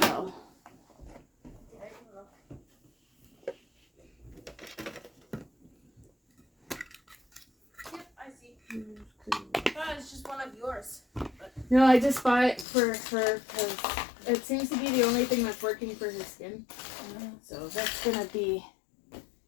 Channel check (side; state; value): right; drops out; at 12.7 s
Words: Yep, I see. Oh, it's just one of yours. No, I just bought it for her because it seems to be the only thing that's working for her skin. So that's gonna be